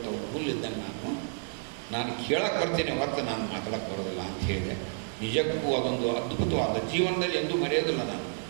ಹುಲ್ಲಿದ್ದಂಗೆ ನಾನು ಕೇಳಕ್ಕೆ ಬರ್ತೀನಿ ಹೊರತು ನಾನು ಮಾತಾಡೋಕ್ಕೆ ಬರೋದಿಲ್ಲ ಅಂತ ಹೇಳಿದೆ. ನಿಜಕ್ಕೂ ಅದೊಂದು ಅದ್ಭುತವಾದ ಜೀವನದಲ್ಲಿ ಎಂದೂ ಮರೆಯೋದಿಲ್ಲ. ನಾನು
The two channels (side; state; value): left; silent; 58 dB below the other